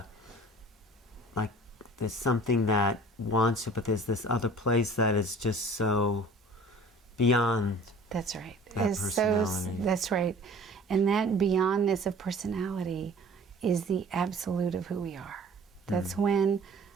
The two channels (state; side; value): normal; both; correlation 0.47